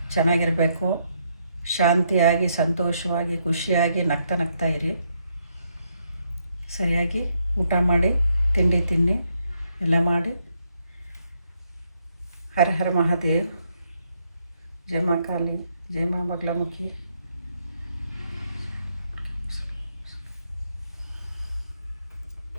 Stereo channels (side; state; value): both; inverted; correlation -0.76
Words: ಚೆನ್ನಾಗಿರಬೇಕು. ಶಾಂತಿಯಾಗಿ, ಸಂತೋಷವಾಗಿ, ಖುಷಿಯಾಗಿ ನಗ್ತಾ ಇರಿ. ಸರಿಯಾಗಿ ಊಟ ಮಾಡಿ, ತಿಂಡಿ ತಿನ್ನಿ, ಎಲ್ಲ ಮಾಡಿ. ಹರ ಹರ ಮಹಾದೇವ್. ಜೈ ಮಾ ಕಾಳಿ, ಜೈ ಮಾ ಬಗ್ಲಾಮುಖಿ.